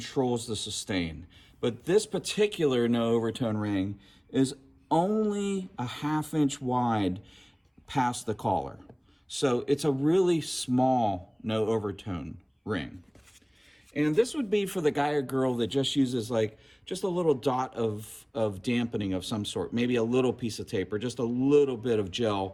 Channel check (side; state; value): both; identical; correlation 1.00